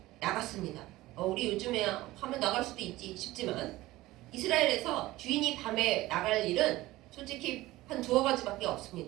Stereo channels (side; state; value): left; quieter; 17.7 dB